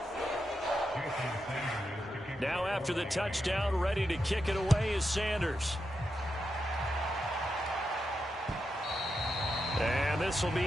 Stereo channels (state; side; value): normal; both; correlation 0.86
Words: Now after the touchdown, ready to kick it away is Sanders. And this will